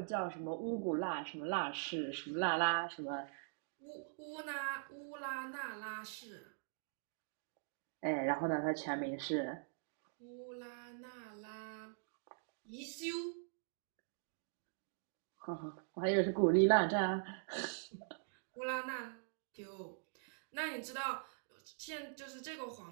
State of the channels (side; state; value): left; silent; digital silence